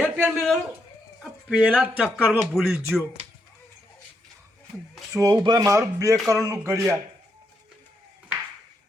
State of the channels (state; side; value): normal; both; correlation 0.80